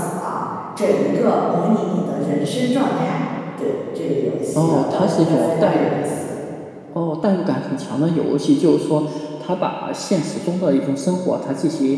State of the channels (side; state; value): both; identical; correlation 1.00